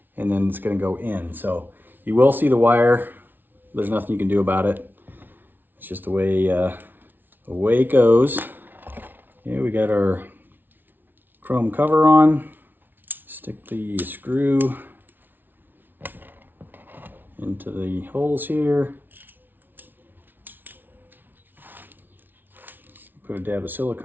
and then it's gonna go in. So you will see the wire. There's nothing you can do about it. It's just the way it goes. Okay, we got our chrome cover on. Stick the screw into the holes here. Put a dab of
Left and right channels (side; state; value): left; late; 0.092 ms